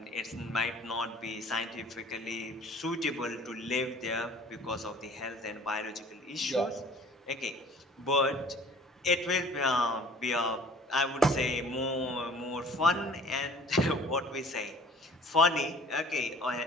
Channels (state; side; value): normal; both; correlation 0.50